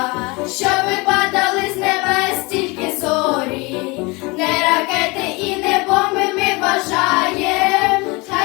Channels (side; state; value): right; quieter; 26.1 dB